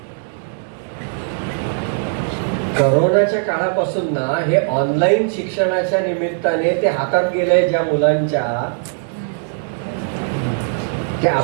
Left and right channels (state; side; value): silent; left; digital silence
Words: करोनाच्या काळापासून ना हे ऑनलाईन शिक्षणाच्या निमित्ताने ते हातात गेलंय ज्या मुलांच्या, ते